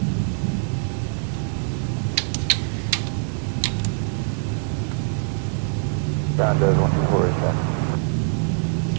Ground does 124 is that.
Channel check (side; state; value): left; silent; digital silence